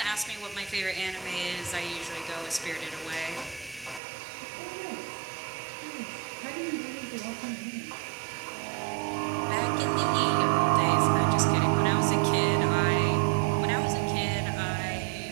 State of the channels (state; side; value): drops out; left; at 4.0 s